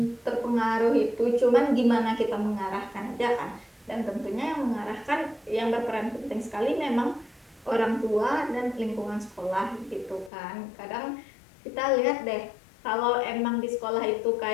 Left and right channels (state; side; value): drops out; right; at 10.3 s